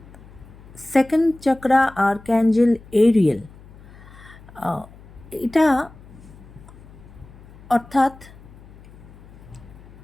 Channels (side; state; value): left; noise; hum, 21 dB below the sound